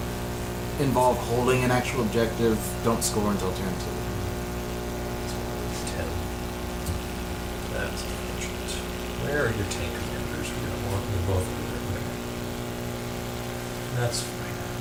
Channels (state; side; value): identical; both; correlation 1.00